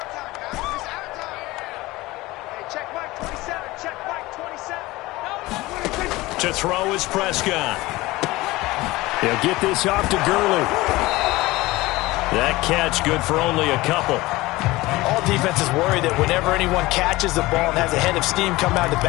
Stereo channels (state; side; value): quieter; right; 19.9 dB